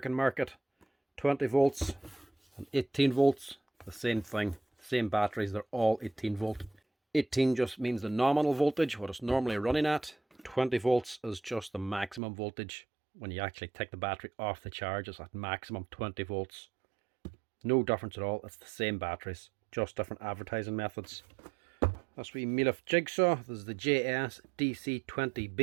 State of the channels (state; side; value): drops out; left; at 12.2 s